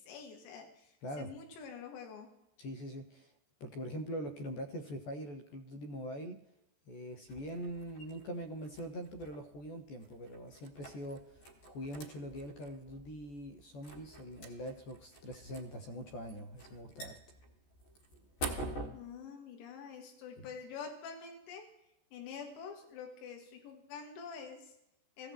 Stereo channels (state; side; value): late; right; 14 ms